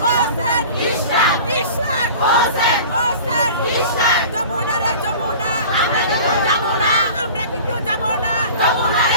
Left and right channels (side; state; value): both; inverted; correlation -0.40